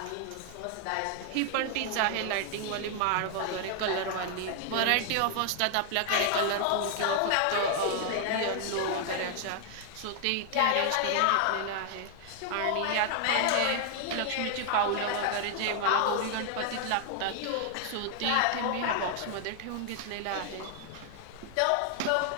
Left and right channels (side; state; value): both; different; correlation 0.00